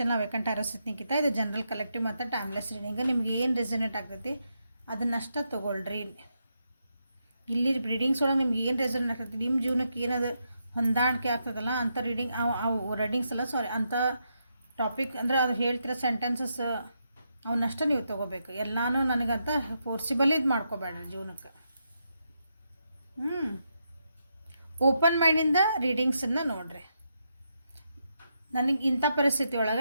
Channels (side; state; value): both; inverted; correlation -0.82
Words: ವೇಕಂಟ್ ಆರಸಿತ್ ನಿಖಿತಾ. ಇದು ಜನರಲ್ ಕಲೆಕ್ಟಿವ್ ಮತ್ತು ಟೈಮ್ಲೆಸ್ ರೀಡಿಂಗ್. ನಿಮ್ಗೆ ಏನು ರೆಸನೇಟ್ ಆಗ್ತೈತಿ ಅದನ್ನಷ್ಟ ತೊಗೊಳ್ರಿ. ಇಲ್ಲಿ ರೀಡಿಂಗ್ಸ್ ಒಳಗೆ ನಿಮ್ಗೆ ಏನು ರೆಸನೇಟ್ ಆಗ್ತೈತಿ, ನಿಮ್ಮ ಜೀವನಕ್ಕೆ ಏನದು ಹೊಂದಾಣಿಕೆ ಆಗ್ತದಲ್ಲ ಅಂಥ ರೀಡಿಂಗ್ ಅವು ರೀಡಿಂಗ್ಸ್ ಅಲ್ಲ, ಸಾರಿ, ಅಂಥ ಟಾಪಿಕ್ ಅಂದರೆ ಅದು ಹೇಳ್ತಿರೋ ಸೆಂಟೆನ್ಸಸ್ ಅವನ್ನಷ್ಟ ನೀವು ತೊಗೋಬೇಕು. ಎಲ್ಲನೂ ನನಗಂತ ಫೋರ್ಸಿಬಲ್ ಇದು ಮಾಡ್ಕೋಬೇಡ್ರಿ ಜೀವನಕ್ಕೆ. ಓಪನ್ ಮೈಂಡಿಂದ ರೀಡಿಂಗ್ಸನ್ನು ನೋಡಿರಿ. ನನಗೆ ಇಂಥ ಪರಿಸ್ಥಿತಿ